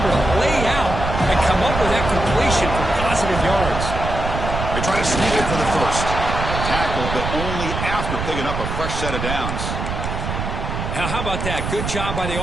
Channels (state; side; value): noise; right; rumble, 4 dB below the sound